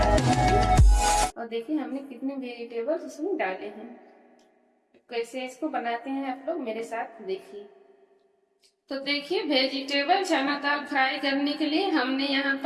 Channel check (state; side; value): identical; both; correlation 1.00